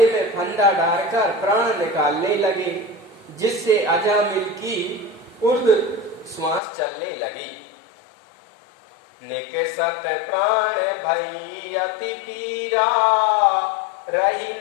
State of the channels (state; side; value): drops out; right; at 6.6 s